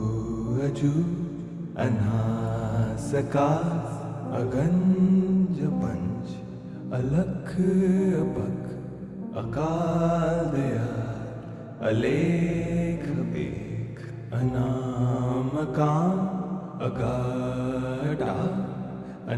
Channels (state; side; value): identical; both; correlation 1.00